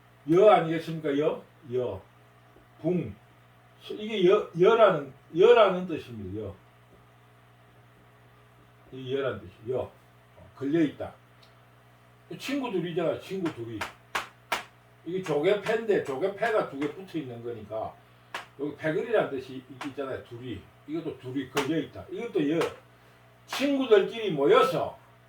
여 아니겠습니까? 붕 이게 여라는 뜻입니다. 이 여라는 뜻이 걸려있다. 친구 둘이잖아. 친구 둘이 이게 조개패인데 조개패가 두 개 붙어 있는 거니까 여기 패거리라는 뜻이 있잖아요. 둘이 이것도 둘이 걸려있다. 이것도 친구들끼리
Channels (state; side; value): identical; both; correlation 1.00